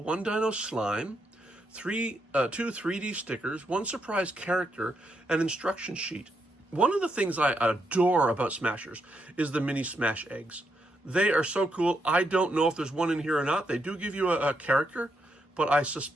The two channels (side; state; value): both; normal; correlation 0.79